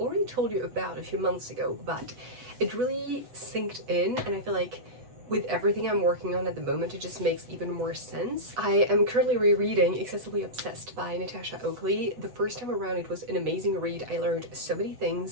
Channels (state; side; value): late; left; 8.1 ms